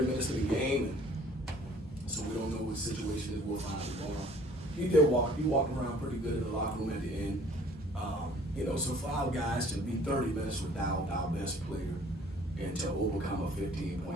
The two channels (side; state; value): both; normal; correlation 0.54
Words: minutes of the game, and so we don't know what situation is. We'll find out tomorrow. He walked around pretty good in the locker room at the end. So for our guys to be 30 minutes without our best player and to overcome a